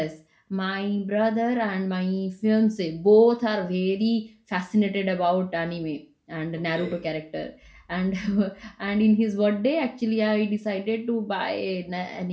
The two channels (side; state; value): both; identical; correlation 1.00